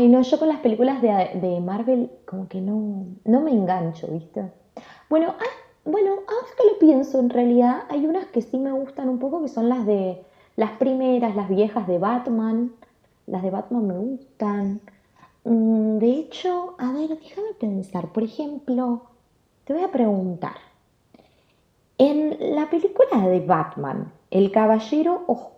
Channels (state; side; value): identical; both; correlation 1.00